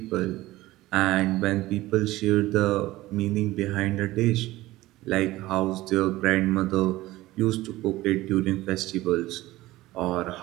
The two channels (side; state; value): left; quieter; 17.5 dB